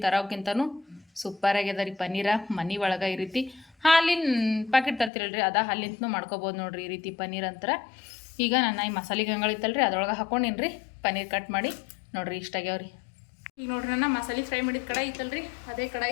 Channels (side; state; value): right; drops out; at 5.1 s